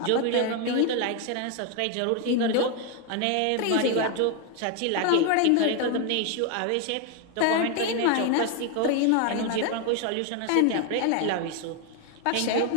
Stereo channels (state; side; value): different; both; correlation 0.01